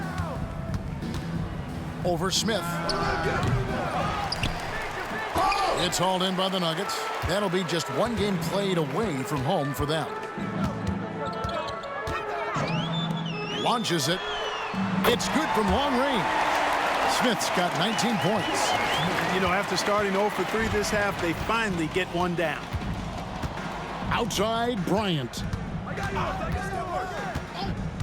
Over Smith. It's hauled in by the Nuggets. That'll be just one game played away from home for them. Launches it. It's good from long range. Smith's got 19 points. You know, after starting 0 for 3 this half, they finally get one down. Outside Bryant.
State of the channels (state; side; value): identical; both; correlation 1.00